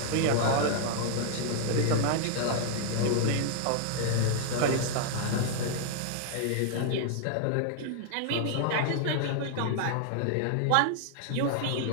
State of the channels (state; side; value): different; both; correlation -0.01